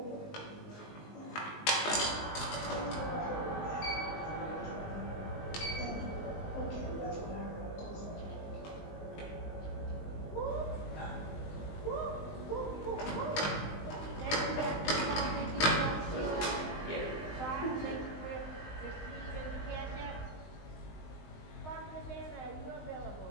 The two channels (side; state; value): right; late; 19 ms